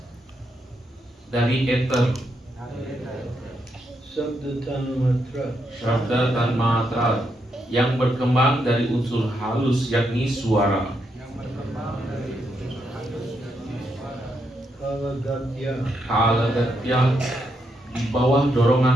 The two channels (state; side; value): normal; both; correlation 0.80